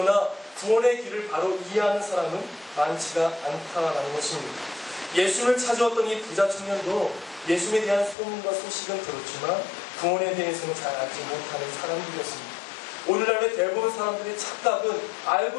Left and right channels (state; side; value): drops out; right; at 8.2 s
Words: 구원의 길을 바로 이해하는 사람은 많지가 않다라는 것입니다. 예수를 찾아왔던 이 부자 청년도 예수에 대한 소문과 소식은 들었지만 구원에 대해서는 잘 알지 못하는 사람들이었습니다. 오늘날의 대부분 사람들의 착각은